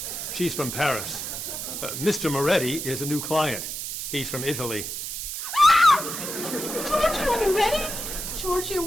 She's from Paris. Mr. Moretti is a new client. He's from Italy. Giorgio Moretti? Giorgio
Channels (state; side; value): noise; right; hiss, 5 dB below the sound